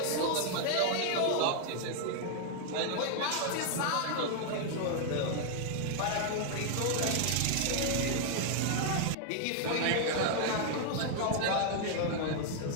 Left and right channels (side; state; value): both; different; correlation 0.00